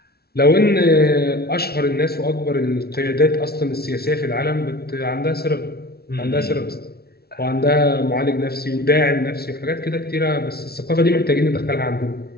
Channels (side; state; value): right; late; 0.45 ms